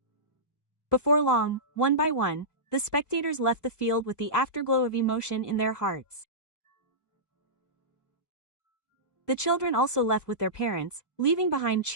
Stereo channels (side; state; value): right; late; 1.2 ms